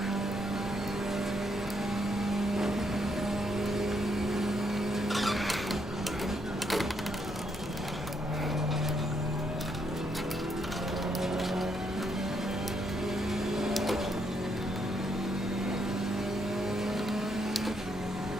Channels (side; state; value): both; normal; correlation 0.75